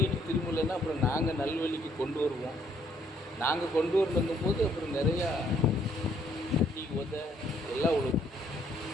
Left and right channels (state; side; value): normal; both; correlation 0.67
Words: திரும்பலைன்னா அப்புறம் நாங்கள் நல்வழிக்கு கொண்டு வருவோம். நாங்கள் கொண்டு வரணுங்கும் போது அப்புறம் நிறையா டீ உத எல்லாம் விழுவும்.